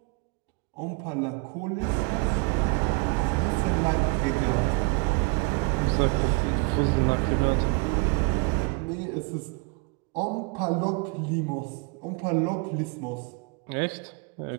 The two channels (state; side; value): quieter; left; 28.3 dB